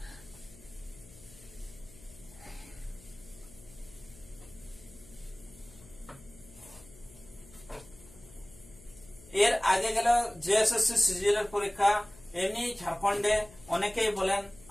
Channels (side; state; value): left; noise; hum, 21 dB below the sound